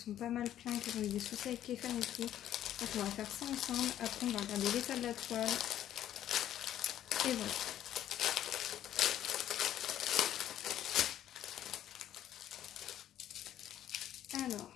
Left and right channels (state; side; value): quieter; right; 11.6 dB